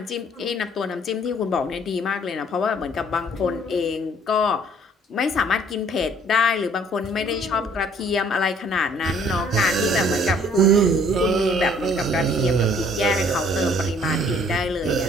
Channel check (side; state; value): both; normal; correlation 0.59